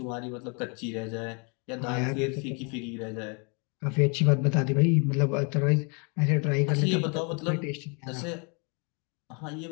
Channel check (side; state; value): right; quieter; 34.3 dB